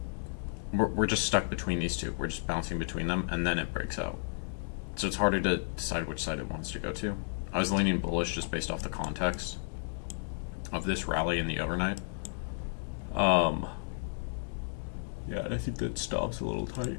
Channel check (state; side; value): silent; right; digital silence